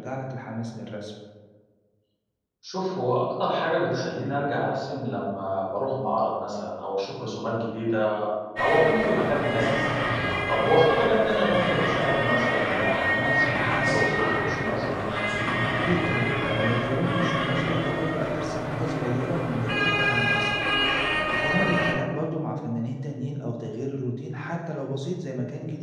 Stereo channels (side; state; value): both; identical; correlation 1.00